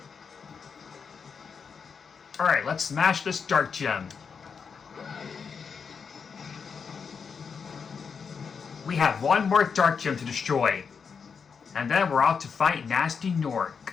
Alright, let's smash this dark gem. We have one more dark gem to destroy. And then we're off to fight Nasty Nork.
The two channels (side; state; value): right; quieter; 6.0 dB